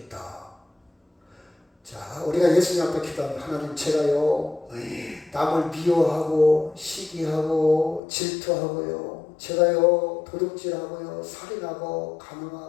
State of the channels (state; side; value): drops out; right; at 8.0 s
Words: 자, 우리가 예수님 앞에 기도하면 하나님, 제가요 남을 미워하고 시기하고 질투하고요, 제가요 도둑질하고요 살인하고